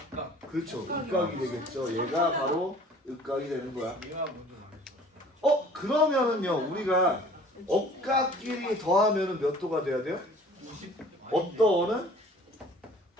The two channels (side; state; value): both; normal; correlation 0.49